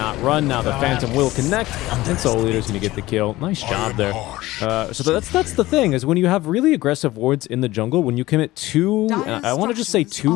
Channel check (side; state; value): right; quieter; 17.8 dB